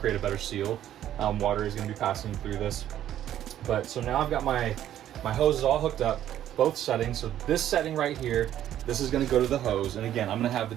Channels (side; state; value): left; quieter; 11.6 dB